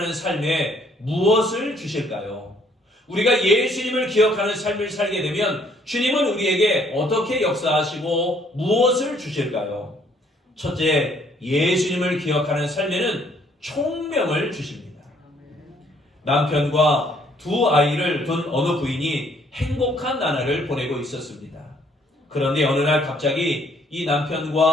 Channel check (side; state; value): both; normal; correlation 0.64